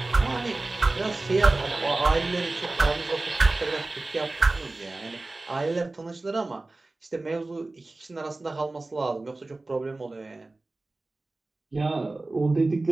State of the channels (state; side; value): quieter; left; 3.1 dB